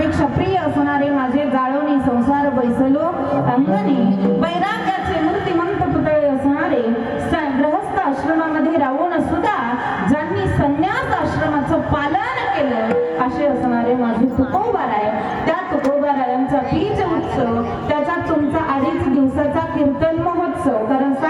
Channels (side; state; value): both; identical; correlation 1.00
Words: प्रिय असणारे माझे जाळवणी संसार बैसलो अंगणी वैराग्याचे मूर्तिमंत पुतळे असणारे गृहस्थ आश्रमामध्ये राहून सुद्धा ज्यांनी संन्यास आश्रमाचं पालन केलं असे असणारे माझे तुकोबाराय. त्या तुकोबारायांचा बीज उत्सव त्याच्यात तुमचा 2.5 दिवसाचा कीर्तन महोत्सव कारण